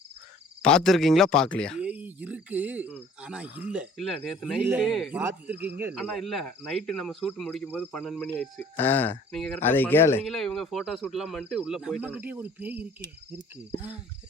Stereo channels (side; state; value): both; normal; correlation 0.52